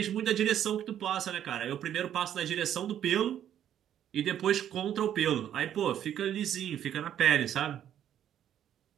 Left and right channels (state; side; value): quieter; left; 10.4 dB